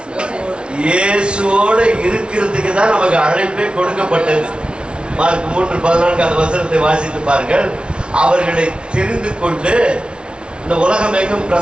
இயேசுவோட இருக்கிறதுக்கு தான் நமக்கு அழைப்பே கொடுக்கப்பட்டது. மார்க் 3:14 அந்த வசனத்தை வாசித்து பாருங்கள். அவர்களை தெரிந்து கொண்டு இந்த உலகம் எங்கும்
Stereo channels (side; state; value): left; late; 0.057 ms